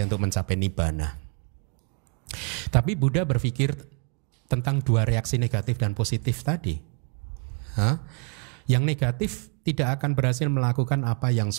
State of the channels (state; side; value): quieter; left; 34.5 dB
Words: untuk mencapai nibbana." Tapi Buddha berpikir tentang 2 reaksi negatif dan positif tadi. Yang negatif tidak akan berhasil melakukan apa yang